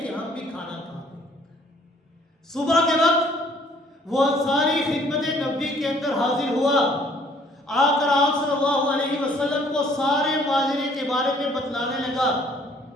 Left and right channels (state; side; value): normal; both; correlation 0.59